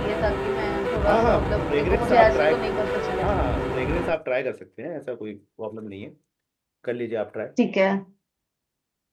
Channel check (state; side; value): identical; both; correlation 1.00